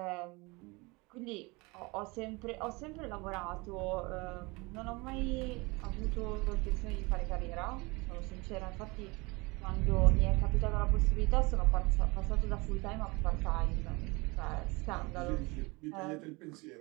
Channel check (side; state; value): left; quieter; 25.6 dB